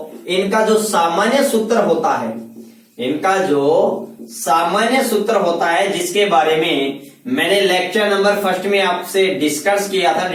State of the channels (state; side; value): identical; both; correlation 1.00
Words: इनका जो सामान्य सूत्र होता है जिसके बारे में मैंने लेक्चर नंबर 1 में आपसे डिस्कस किया था